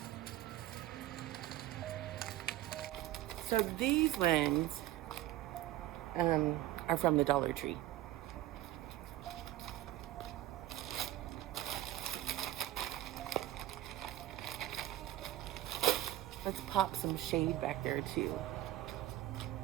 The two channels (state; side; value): quieter; left; 14.7 dB